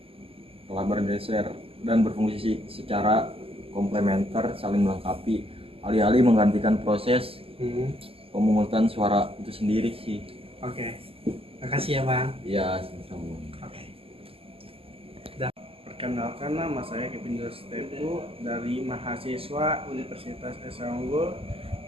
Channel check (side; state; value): left; late; 0.27 ms